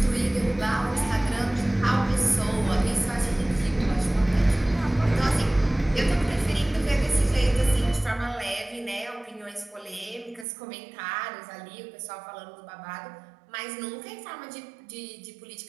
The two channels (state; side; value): drops out; left; at 10.5 s